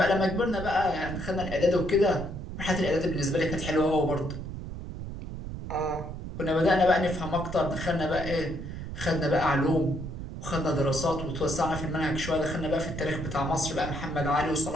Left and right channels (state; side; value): noise; right; rumble, 8 dB below the sound